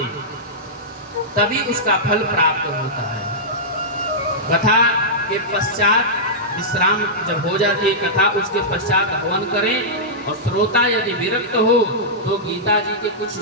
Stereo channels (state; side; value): normal; both; correlation -0.12